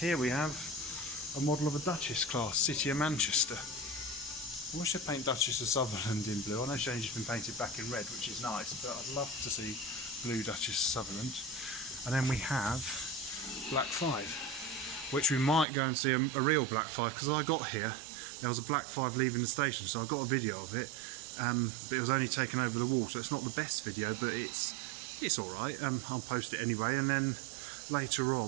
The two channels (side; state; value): left; drops out; at 15.7 s